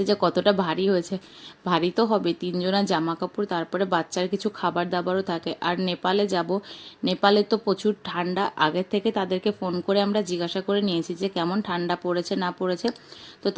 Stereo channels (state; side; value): identical; both; correlation 1.00